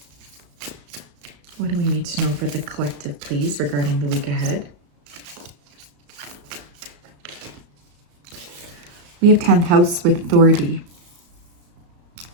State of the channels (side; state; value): left; late; 34 ms